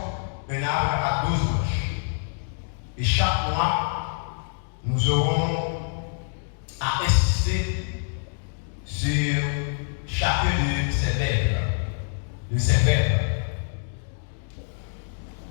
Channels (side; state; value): right; silent; digital silence